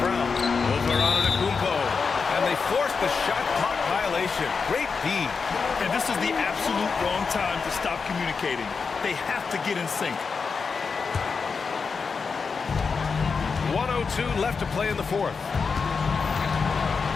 Brown. Over on Antetokounmpo. And they force the shot clock violation. Great D. And this is the absolute wrong time to stop communicating. They have to get in sync. 1:02 left to play in the fourth.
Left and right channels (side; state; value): right; quieter; 5.2 dB